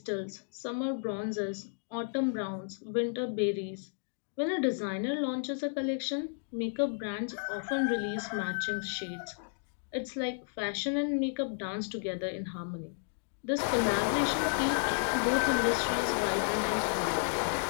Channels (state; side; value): silent; right; digital silence